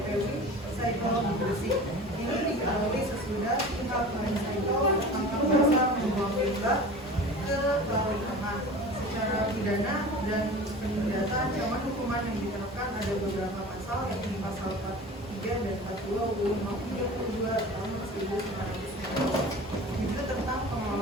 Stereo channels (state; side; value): normal; both; correlation 0.37